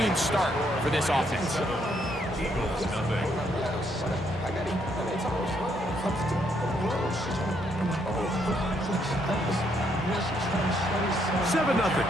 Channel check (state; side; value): normal; both; correlation 0.73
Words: start for this offense.